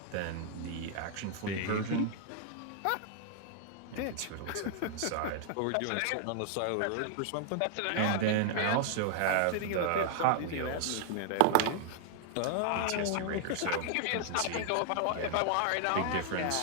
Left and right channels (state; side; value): different; both; correlation -0.01